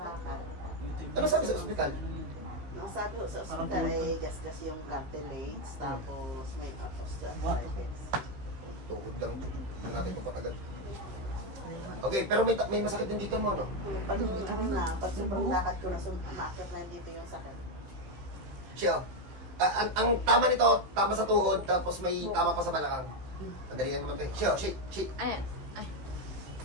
ano sabi sa ospital? Ang sabi ko sa ospital ay gasgas yung cartilage, tapos may osteoarthritis. Tuhod lang. Hindi natin ito patagal. Okay, pero may masakit din dito mo, no? Pag sobrang lakad ko na sumakit na dito yung sakit. Siya, ang tama nito, tama sa tuhod, tapos may tama pa sa balakang. Madali lang naman ito. Siya, shake. Ayan.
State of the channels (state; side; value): late; left; 15 ms